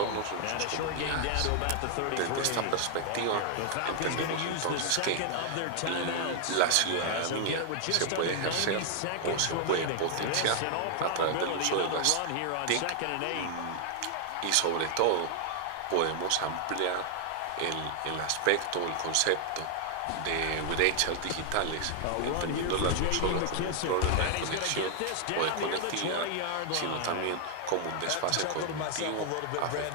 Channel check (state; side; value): different; both; correlation 0.00